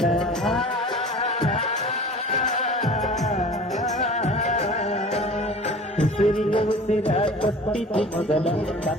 ಉಸಿರಿಗೆ ಉಸಿರ ಕೊಟ್ಟಿತು ಮೊದಲ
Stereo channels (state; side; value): normal; both; correlation 0.42